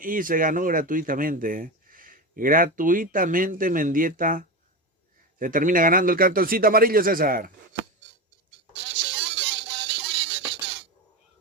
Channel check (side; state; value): both; normal; correlation 0.20